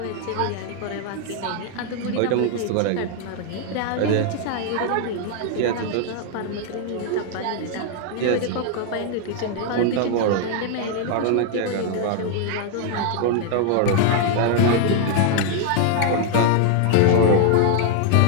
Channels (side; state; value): both; different; correlation 0.00